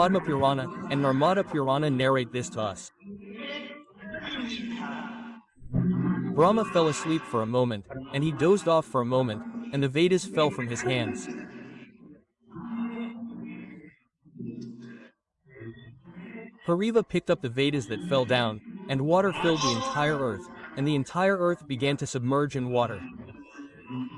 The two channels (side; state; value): both; identical; correlation 1.00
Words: Purana, and Narmada Purana narrate this to us. Brahma fell asleep for a moment, and he dozed off for a moment, and the Vedas fell from his hands. Hariva picked up the Vedas that fell down, and water filled the entire earth, and the entire earth began to submerge in water.